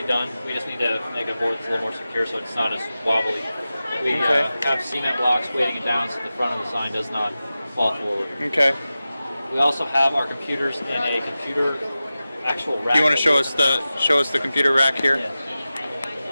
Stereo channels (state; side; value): inverted; both; correlation -0.95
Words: done. We just need to make a board that's a little more secure so it's not as wobbly. We have cement blocks weighting it down so the front of the sign does not fall forward. Okay. We also have our computers in a computer actual rack. You want to show us the computer rack here? Yeah.